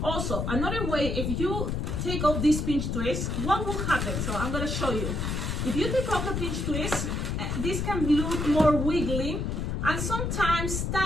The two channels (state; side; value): noise; left; rumble, 1 dB below the sound